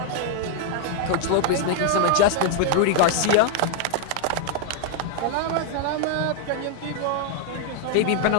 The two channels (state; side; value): different; both; correlation 0.00